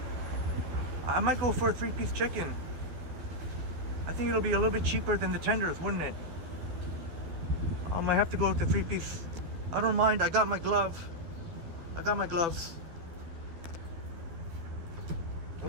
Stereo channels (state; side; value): late; left; 12 ms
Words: I might go for a 3-piece chicken. I think it'll be a little bit cheaper than the tenders, wouldn't it? I might have to go with the 3-piece. I don't mind. I got my glove. I got my gloves.